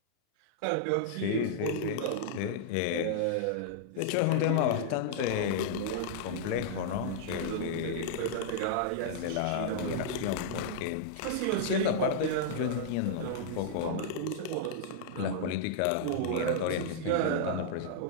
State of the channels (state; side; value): different; both; correlation -0.02